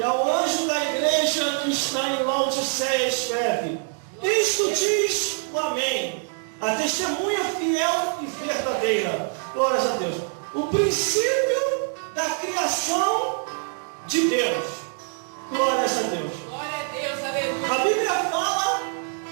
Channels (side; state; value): left; silent; 55 dB below the other